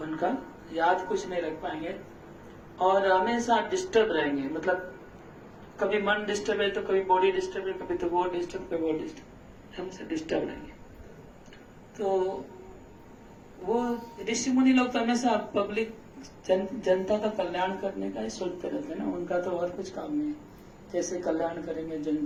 उनका याद कुछ नहीं रख पाएंगे और हमेशा डिस्टर्ब रहेंगे। मतलब कभी मन डिस्टर्ब है तो कभी बॉडी डिस्टर्ब है, कभी तो वो डिस्टर्ब, कभी वो डिस्टर्ब, हमेशा डिस्टर्ब रहेंगे। तो वो ऋषि मुनि लोग तो हमेशा पब्लिक जनता का कल्याण करने का ही सोचते रहते हैं ना, उनका तो और कुछ काम नहीं है, कैसे कल्याण करेंगे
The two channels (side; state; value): both; identical; correlation 1.00